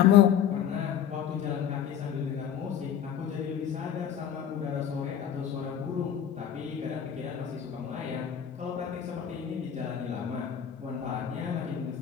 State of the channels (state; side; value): quieter; right; 9.2 dB